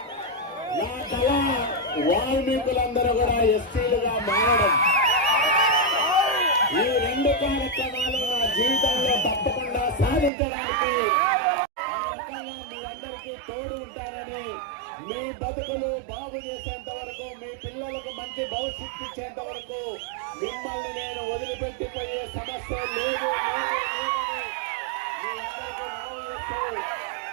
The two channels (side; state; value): left; drops out; at 10.3 s